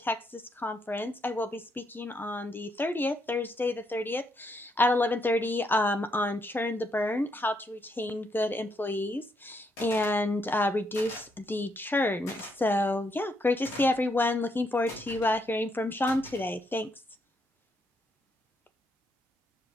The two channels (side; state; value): both; normal; correlation 0.76